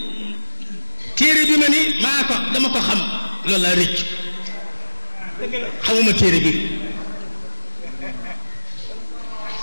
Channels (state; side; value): inverted; both; correlation -1.00